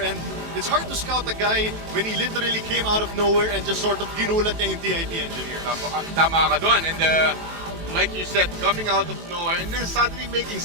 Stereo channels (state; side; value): late; left; 18 ms